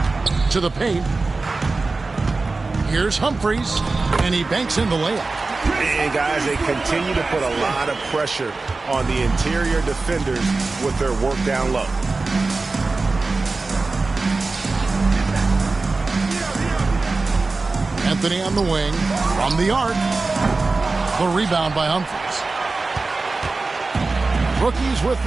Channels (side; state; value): left; quieter; 3.7 dB